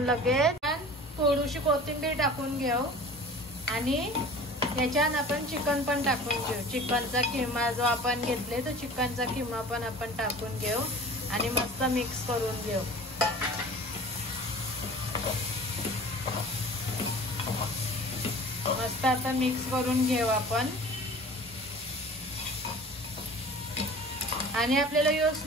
लगेच थोडीशी कोथिंबीर टाकून घेऊ आणि याच्यात आपण चिकन पण टाकून घेऊ। चिकनचा किमा जो आपण घेतले तो चिकनचा किमा पण आपण टाकून घेऊ आणि मस्त मिक्स करून घेऊ। मस्त आता मिक्स करून घेऊ आपण। आणि आपल्याला यो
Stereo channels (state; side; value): normal; both; correlation 0.42